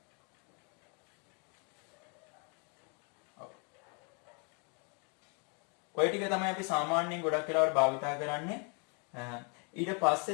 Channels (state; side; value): quieter; right; 35.7 dB